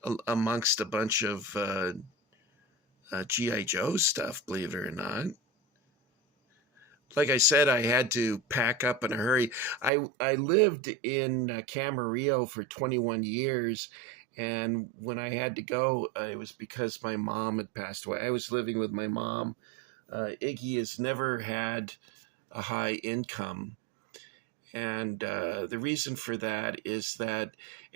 amongst a bunch of G.I. Joe stuff, believe it or not. Like I said, I had to pack up in a hurry. I lived in Camarillo for 21 years, and when I had to go, it was because my mom had passed away. I was living with my mom. Iggy has never had a high income, and the reason for that is that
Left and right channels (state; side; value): drops out; left; at 9.9 s